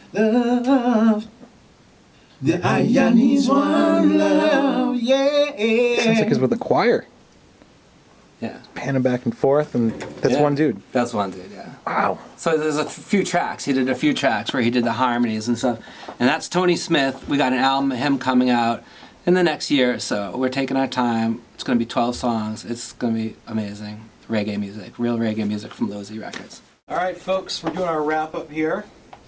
The Aya needs one love, yeah. Sounds like he's with a choir. Yeah. Panning back and forth, and that's Yeah. one dude. That's one dude, yeah. Wow. So there's a few tracks. He did a few tracks where he did the harmonies and stuff. And that's Tony Smith. We got an album of him coming out in the next year or so. We're taking our time. It's going to be 12 songs. It's going to be amazing. Reggae music. Real reggae music from Losey Records. All right, folks, we're doing our wrap-up here.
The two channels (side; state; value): both; identical; correlation 1.00